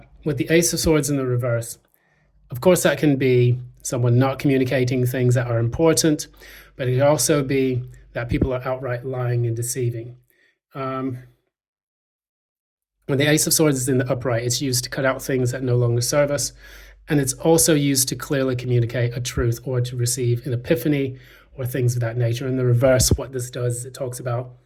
with the Ace of Swords in the reverse, of course, that can be someone not communicating things that are important, but it can also be that people are outright lying and deceiving. When the Ace of Swords is in the upright, it's used to cut out things that no longer serve us, and it's also used to clearly communicate a truth or to receive an epiphany or things of that nature. In the reverse, what this does is it talks about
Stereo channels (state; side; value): identical; both; correlation 1.00